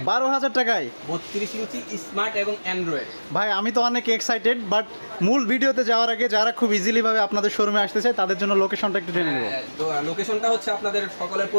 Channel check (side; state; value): both; inverted; correlation -1.00